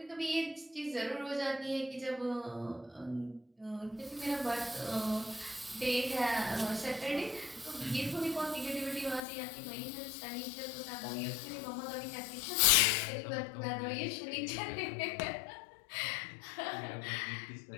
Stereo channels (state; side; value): drops out; right; at 9.2 s